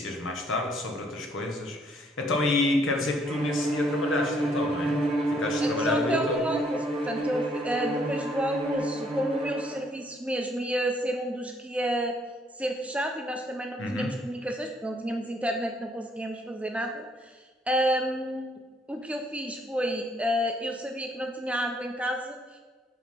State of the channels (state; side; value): normal; both; correlation 0.67